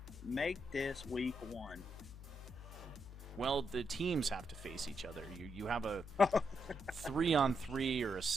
make this week 1. Well, the teams have to face each other. You have a 3-on-3 or a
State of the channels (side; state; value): left; noise; hum, 14 dB below the sound